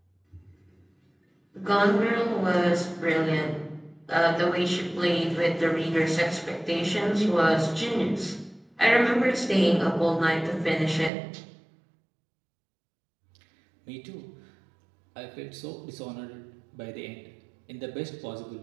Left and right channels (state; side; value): drops out; left; at 11.1 s